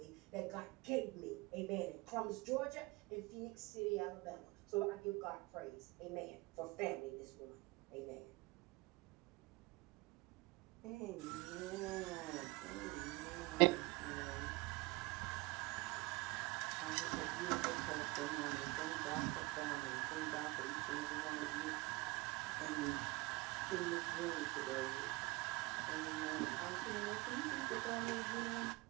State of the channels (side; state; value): left; quieter; 23.7 dB